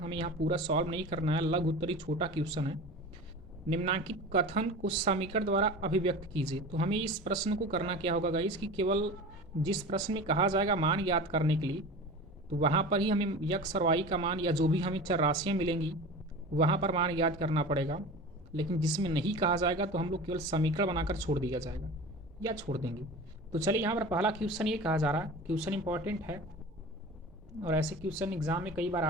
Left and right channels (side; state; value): both; normal; correlation 0.34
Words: हमें यहाँ पूरा सॉल्व नहीं करना है, लघुत्तरी छोटा क्वेश्चन है। निम्नांकित कथन को समीकरण द्वारा अभिव्यक्त कीजिए। तो हमें इस प्रश्न को करना क्या होगा गाइस कि केवल जिस प्रश्न में कहा जाएगा मान याद करने के लिए, तो वहाँ पर ही हमें यक्स और वाई का मान या जो भी हमें चर राशियाँ मिलेंगी वहाँ पर मान याद करना पड़ेगा। लेकिन जिसमें नहीं कहा जाएगा तो हम लोग केवल समीकरण बनाकर छोड़ दिया जाएगा या छोड़ देंगे। तो चलिए यहाँ पर पहला क्वेश्चन ये कहा जा रहा है, क्वेश्चन इंपॉर्टेंट है और ऐसे क्वेश्चन एग्जाम में कई बार